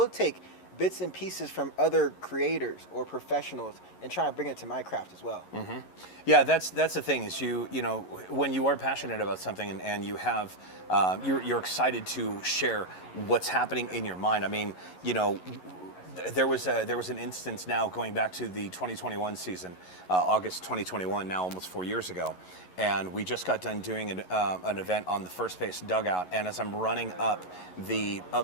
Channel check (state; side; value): late; right; 11 ms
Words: take bits and pieces from other creators or professionals and try and bring it to my craft as well. Yeah, that's the thing is you know, when you are passionate about something and you have, you're excited to share what's happening in your mind. I mean, you know, there was an instance now going back to the 2021 season, August 2021, now almost 4 years ago, and we just got done doing an event on the first base dugout, and as I'm running up